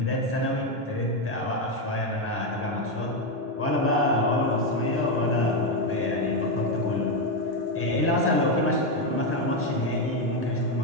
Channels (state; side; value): normal; both; correlation 0.07